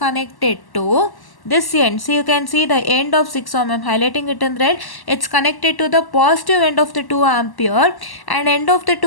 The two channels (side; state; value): right; late; 1.1 ms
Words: connected to this end. So you can see the end of 6 ohm, I am highlighting it in red. It's connected to the positive end of the 2 ampere, and end of the